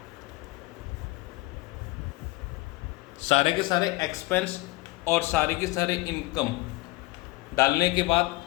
सारे के सारे एक्सपेंस और सारे के सारे इनकम डालने के बाद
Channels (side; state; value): right; quieter; 20.9 dB